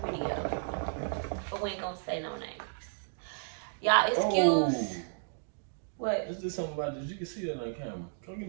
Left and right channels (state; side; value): silent; left; digital silence